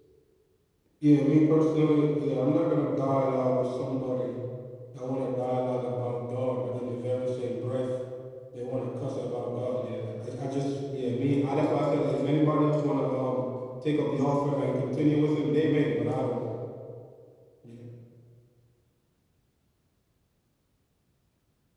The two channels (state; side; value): identical; both; correlation 1.00